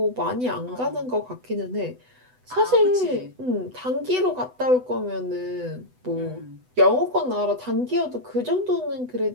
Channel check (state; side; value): late; left; 8.0 ms